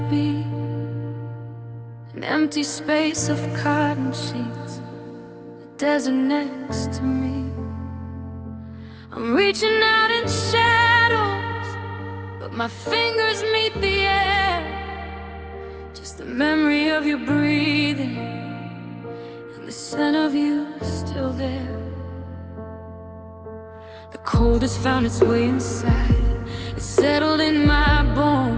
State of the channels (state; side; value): identical; both; correlation 1.00